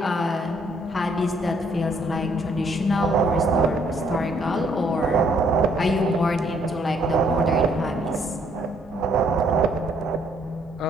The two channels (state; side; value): normal; both; correlation 0.67